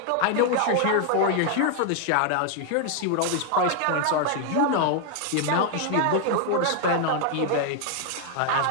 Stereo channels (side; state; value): both; different; correlation 0.00